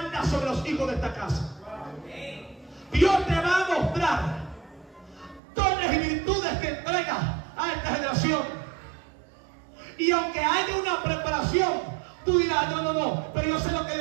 sobre los hijos de esta casa. Dios te va a mostrar dones y virtudes que entrega a esta generación. Y aunque haya una preparación, tú dirás, no, pero yo sé lo que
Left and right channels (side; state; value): left; drops out; at 5.4 s